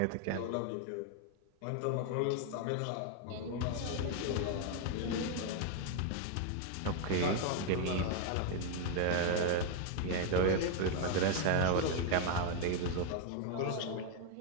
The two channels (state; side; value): different; both; correlation 0.01